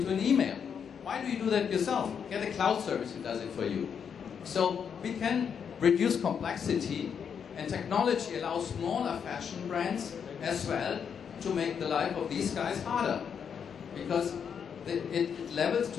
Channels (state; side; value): quieter; right; 7.3 dB